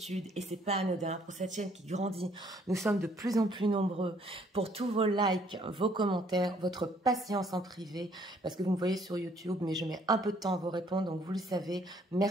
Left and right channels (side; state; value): both; normal; correlation 0.64